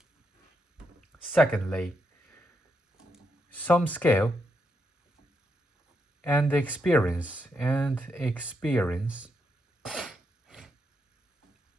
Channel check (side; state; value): both; normal; correlation 0.81